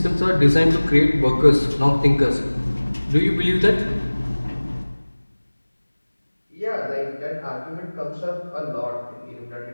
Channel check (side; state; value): both; inverted; correlation -1.00